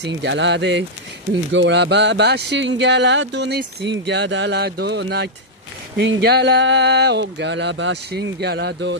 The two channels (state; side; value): normal; both; correlation -0.06